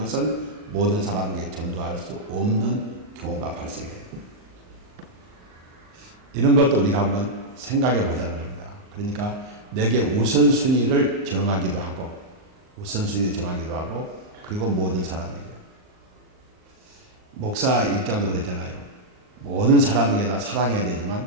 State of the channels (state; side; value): late; left; 38 ms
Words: 모든 사람에게 전도할 수 없는 경우가 발생해요. 이런 것도 우리가 한번 생각해 보자는 겁니다. 그러니까 내게 우선순위를 정하기도 하고 그리고 모든 사람에게. 목사 입장도 그랬잖아요. 모든 사람에게 다 사랑해야